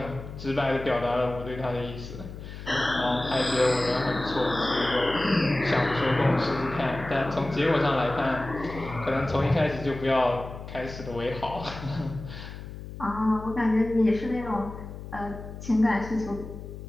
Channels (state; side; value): noise; left; hum, 11 dB below the sound